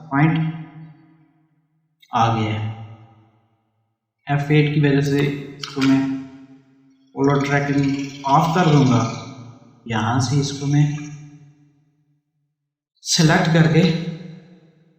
पॉइंट आ गया है। F8 की वजह से इसको मैं पोलर ट्रैकिंग ऑफ कर दूँगा। यहाँ से इसको मैं सेलेक्ट करके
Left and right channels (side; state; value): both; identical; correlation 1.00